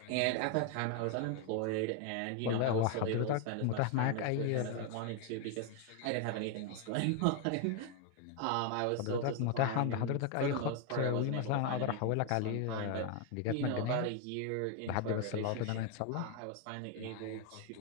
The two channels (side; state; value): both; different; correlation 0.01